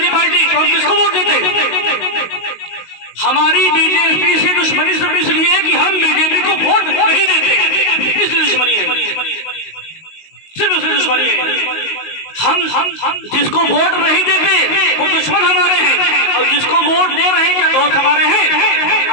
पार्टी, तो हम किसको वोट देते? हमारी बीजेपी से दुश्मनी सिर्फ इसलिए कि हम बीजेपी को वोट नहीं देते, इसलिए दुश्मनी है, सिर्फ इसलिए दुश्मनी है। हम जिसको वोट नहीं देते वो दुश्मन हमारे हैं, और जिसको वोट दे रहे हैं क्या दोस्त हमारे हैं?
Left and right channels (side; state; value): right; late; 19 ms